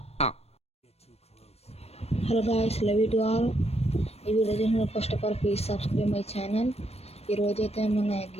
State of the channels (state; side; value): late; right; 0.30 ms